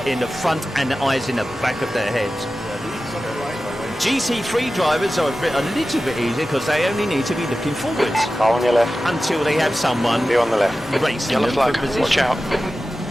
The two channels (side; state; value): both; normal; correlation 0.94